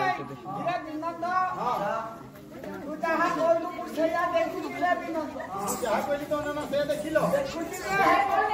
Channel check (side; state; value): both; identical; correlation 1.00